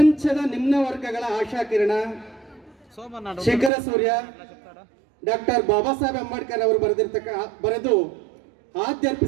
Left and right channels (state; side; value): drops out; left; at 3.7 s